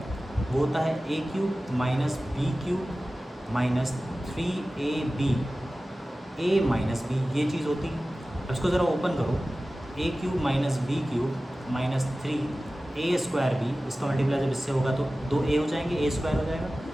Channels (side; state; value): both; normal; correlation 0.96